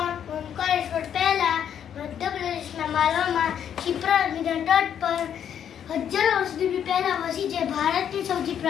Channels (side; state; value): right; quieter; 9.0 dB